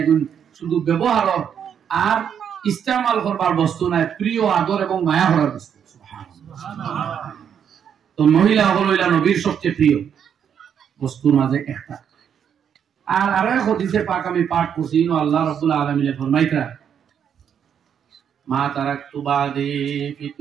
শুধু ব্যবহারের আর ইস্তেমাল করবার বস্তু নাই, প্রিয় আদর এবং মায়া করার বস্তু। তো মহিলা হইলা নবীর সবচেয়ে প্রিয় বস্তুর মাঝে একটা। আর আরো এক হাদিসে পাক আমি পাঠ করছি, আল্লাহ রাব্বুল আলামিন ফরমাইতা, মা তারাকতু বাদি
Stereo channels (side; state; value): left; quieter; 8.2 dB